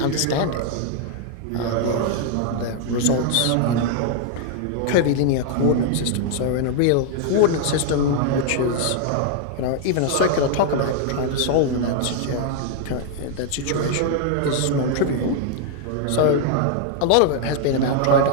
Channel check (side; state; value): both; different; correlation 0.00